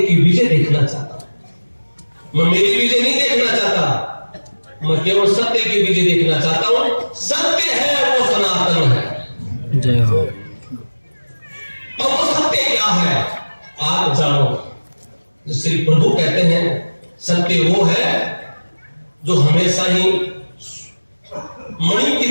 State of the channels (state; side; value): inverted; both; correlation -1.00